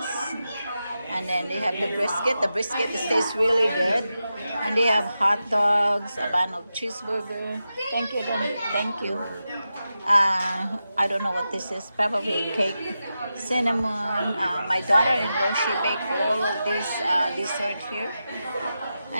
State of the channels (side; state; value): both; inverted; correlation -0.90